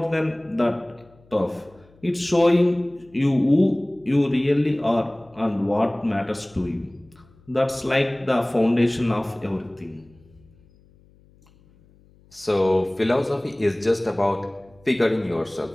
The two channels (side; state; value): left; noise; hum, 29 dB below the sound